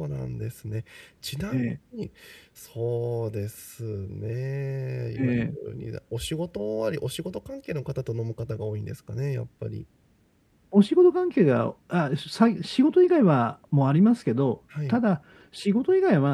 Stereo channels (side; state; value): both; identical; correlation 1.00